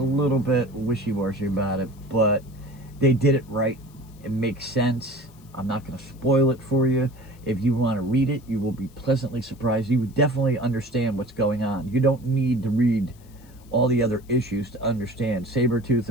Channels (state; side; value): noise; left; hiss, 28 dB below the sound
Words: little bit wishy-washy about it, but they did it right. It makes sense. I'm not going to spoil it for you. If you want to read it, you will be pleasantly surprised. You would definitely understand what's going on. You don't need to read all the other issues to understand Sabretooth